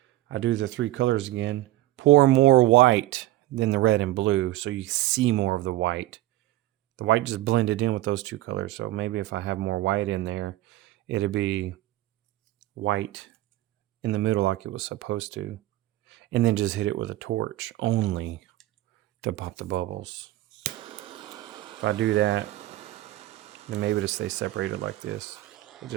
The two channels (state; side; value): quieter; left; 16.2 dB